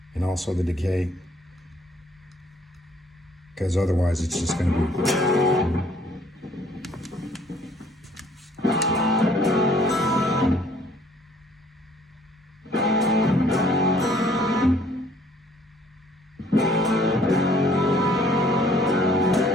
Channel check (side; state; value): both; normal; correlation 0.60